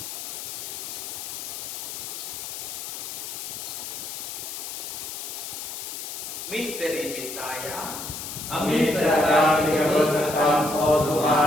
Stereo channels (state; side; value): noise; left; hiss, 7 dB below the sound